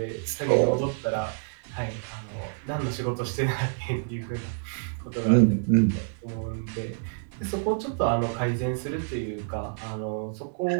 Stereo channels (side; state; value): left; silent; 59 dB below the other